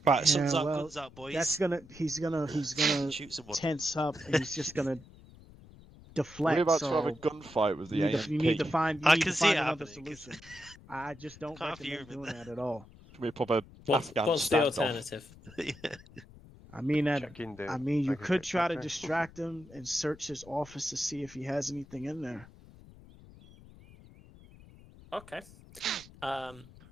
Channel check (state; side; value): noise; left; rumble, 21 dB below the sound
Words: Right, guns out, boys. He's gonna shoot someone. tense up, and he's just gonna deflect. We're about to have a gunfight with the AMP. You need to find. I can see it another happening. solution. I just don't recommend doing that at all. We pop a What's the alternative? I mean, you could try to distract him and search his office to see if he has anything in there. Okay.